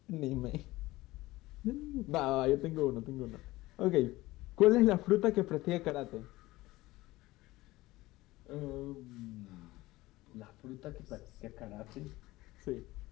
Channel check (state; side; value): quieter; right; 18.8 dB